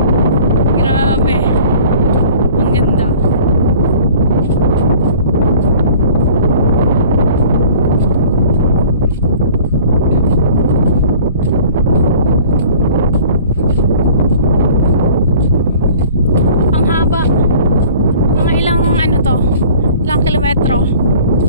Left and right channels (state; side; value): inverted; both; correlation -0.48